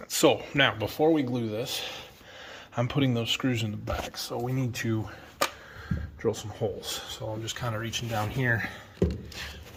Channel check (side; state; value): both; identical; correlation 1.00